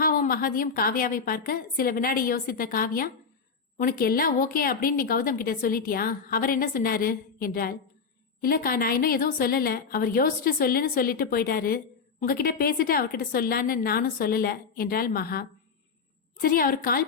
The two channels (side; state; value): right; quieter; 5.5 dB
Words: மகதியும் காவ்யாவை பார்க்க சில வினாடி யோசித்த காவ்யா, உனக்கு எல்லாம் ஓகே அப்படின்னு நீ கௌதம் கிட்ட சொல்லிட்டியா? அவர் என்ன சொன்னாரு என்றாள். இல்லக்கா, நான் இன்னும் எதுவும் சொல்லல. அவர் யோசிச்சுட்டு சொல்லுன்னு சொல்லிட்டு போயிட்டாரு. உங்ககிட்ட பேசிட்டு அவர்கிட்ட சொல்லான்னு நானும் சொல்லல என்றாள் மகா. சரி, அவர்